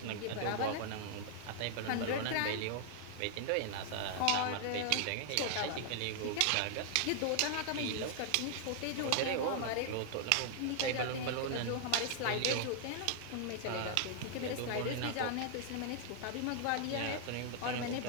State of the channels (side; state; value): both; different; correlation 0.00